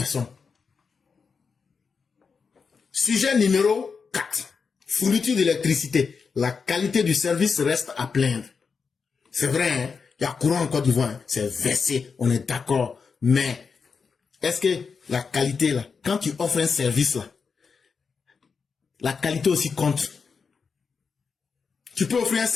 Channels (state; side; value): quieter; right; 5.5 dB